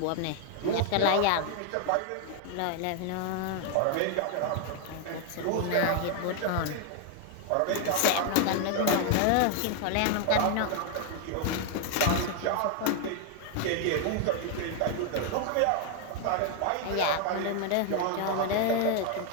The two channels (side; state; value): both; different; correlation 0.00